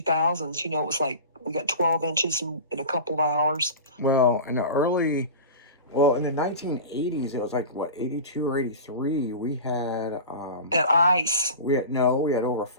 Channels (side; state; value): both; inverted; correlation -0.33